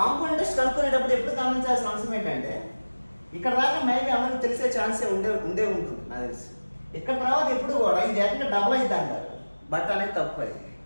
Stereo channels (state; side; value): inverted; both; correlation -1.00